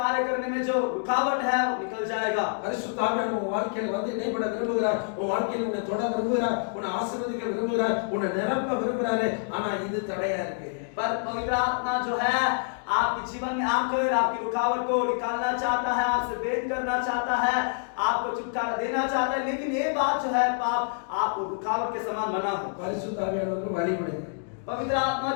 करने में जो रुकावट है वो निकल जाएगा। பரிசுத்த ஆவியானவர் உங்க வாழ்க்கையில வந்து இடைப்பட விரும்புகிறார், உங்க வாழ்க்கையில உன்னை தொட விரும்புகிறார், உன்னை ஆசீர்வதிக்க விரும்புகிறார், உன்னை நிரப்ப விரும்புகிறாரு. ஆனா இது தடையா இருக்கு. पर पवित्र आत्मा जो है आपके जीवन में आकर आपकी रुकावट को निकालना चाहता है, आपसे भेद करना चाहता है, आपको छुटकारा देना चाहता है, लेकिन ये बात जो है पाप आपको रुकावट के समान बना है। பரிசுத்த ஆவியானவருக்கு வழிபடுங்க. पवित्र आत्मा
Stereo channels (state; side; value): silent; right; digital silence